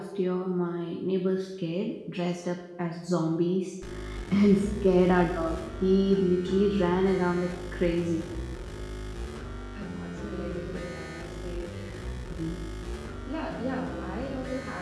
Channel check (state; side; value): identical; both; correlation 1.00